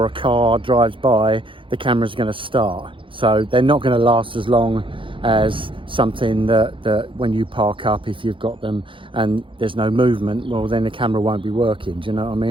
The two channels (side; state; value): left; late; 0.25 ms